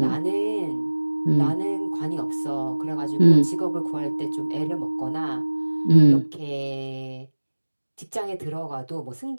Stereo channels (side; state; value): both; inverted; correlation -1.00